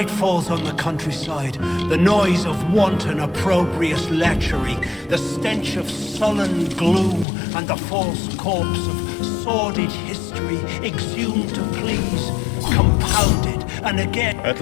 falls on the countryside, the noise of wanton, opprobrious lechery, the stench of sullen gloom, and the false corpse of sordid history exhumed to please, compounded, and again... At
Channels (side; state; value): right; drops out; at 7.2 s